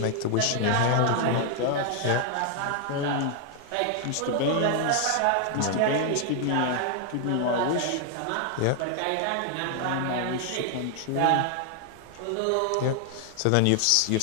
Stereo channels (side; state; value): both; different; correlation 0.00